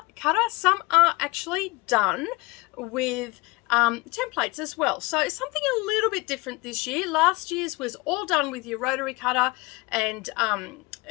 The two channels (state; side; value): quieter; right; 24.0 dB